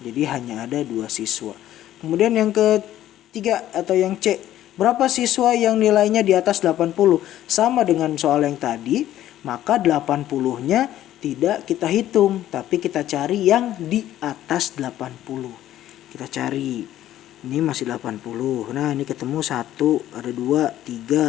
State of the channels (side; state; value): right; quieter; 12.9 dB